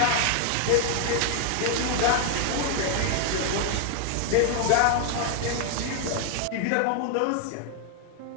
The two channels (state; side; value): different; both; correlation 0.00